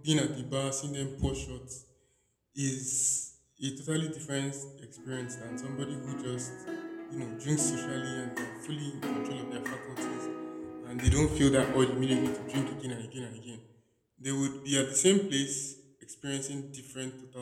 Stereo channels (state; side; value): identical; both; correlation 1.00